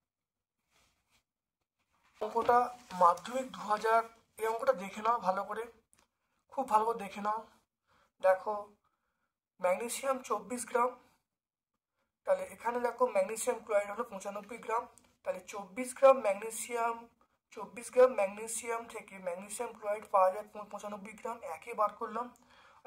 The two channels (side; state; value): both; identical; correlation 1.00